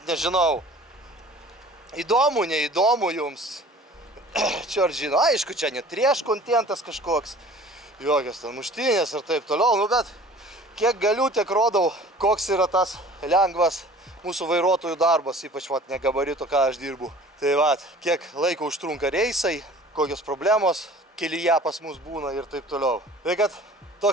nežinau. Įdomu, neįdomu jums. Čia ar žino, aišku, čia net trieš kontentas kažkoks. Jokios ten muštinės ir taip toliau, nu bet kiek galiu, tiek rodau, koks yra tas lengvas mūsų vairuotojų darbas, ypač vat negabarito, ką aš dirbu. Tai vat, kiek laiko užtrunka reisai, kokios problemos kelyje pas mus būna ir taip toliau. Tai kad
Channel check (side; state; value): both; normal; correlation 0.47